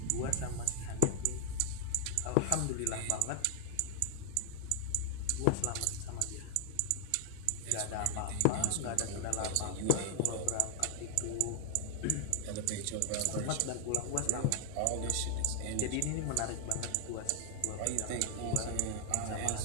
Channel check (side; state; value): both; different; correlation 0.00